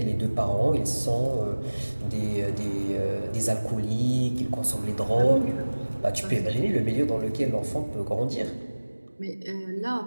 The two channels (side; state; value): both; inverted; correlation -1.00